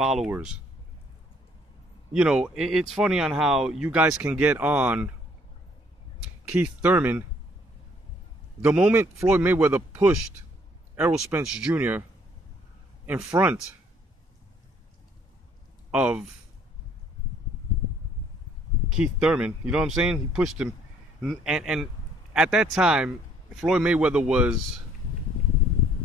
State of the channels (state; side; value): normal; both; correlation 0.63